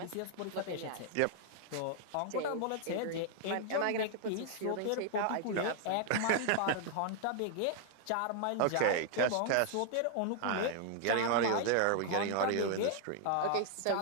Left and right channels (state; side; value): different; both; correlation 0.00